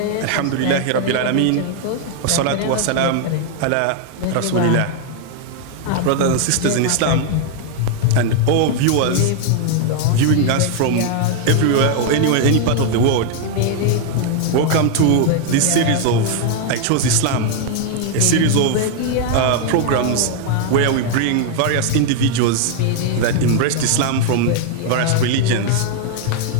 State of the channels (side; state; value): both; different; correlation 0.00